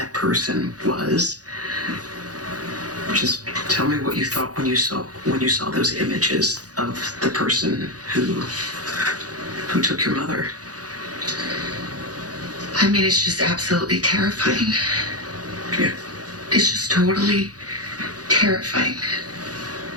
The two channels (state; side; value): late; left; 0.68 ms